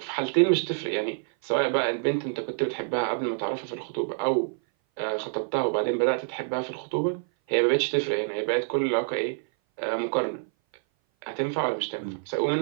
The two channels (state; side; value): silent; left; 58 dB below the other